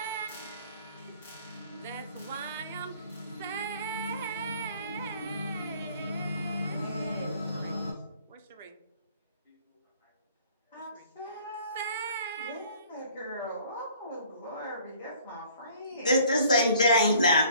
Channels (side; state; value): both; inverted; correlation -0.55